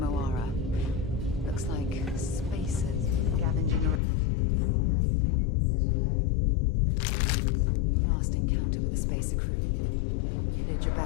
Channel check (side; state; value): right; drops out; at 4.0 s